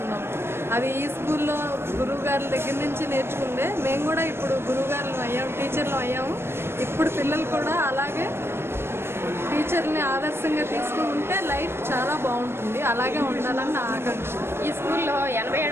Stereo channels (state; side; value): late; left; 0.12 ms